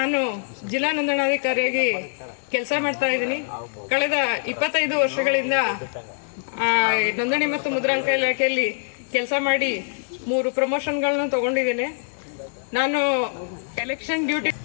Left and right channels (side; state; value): right; silent; digital silence